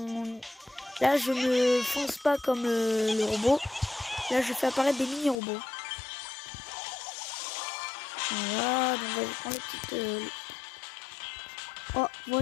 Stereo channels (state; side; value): drops out; right; at 5.4 s